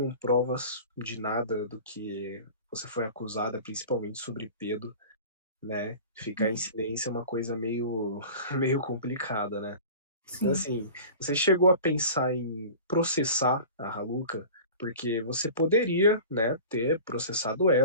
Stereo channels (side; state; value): both; inverted; correlation -0.38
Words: provas de nada do que você foi acusada, principalmente sobre Pedro, né? Ficar em silêncio é uma coisa meio, meio complicada, né? Então, assim, você chegou a pensar em processar a Raluca? Porque você poderia, né, ter processado